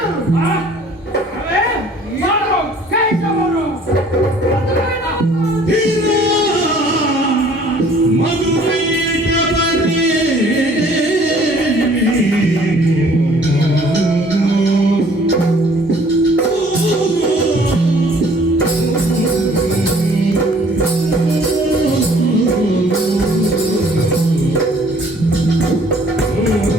ಅವೇ ಯಾರು ಕೈತವರು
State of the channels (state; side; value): normal; both; correlation 0.56